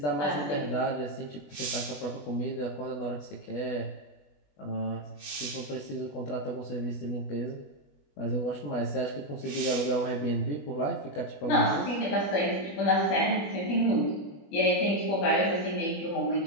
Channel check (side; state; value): right; late; 21 ms